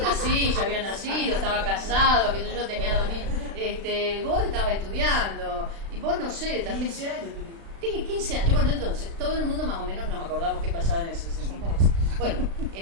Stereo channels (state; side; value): late; left; 36 ms